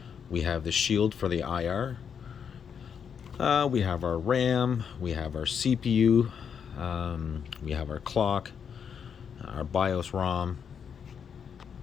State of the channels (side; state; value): right; quieter; 7.2 dB